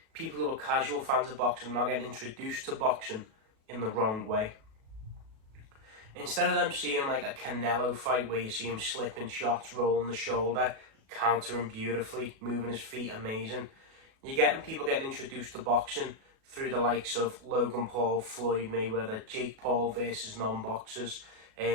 people who are casual fans of boxing are now getting introduced to boxing in the wrong way. Instead of them seeing like a Canelo fight where you see him slipping shots, rolling the shoulder, countering beautifully, moving his feet amazing, you're getting people getting introduced to boxing through the likes of Logan Paul, Floyd Mayweather, Jake Paul versus non-boxers,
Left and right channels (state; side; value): late; left; 37 ms